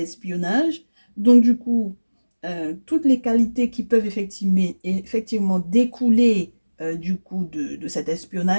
donc du coup, toutes les qualités qui peuvent effectivement découler du coup de cet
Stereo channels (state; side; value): inverted; both; correlation -1.00